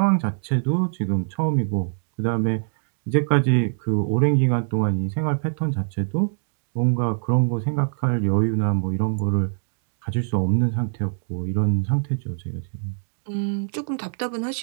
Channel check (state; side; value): silent; left; digital silence